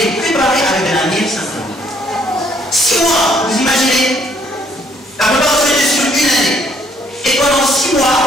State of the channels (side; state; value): both; normal; correlation 0.65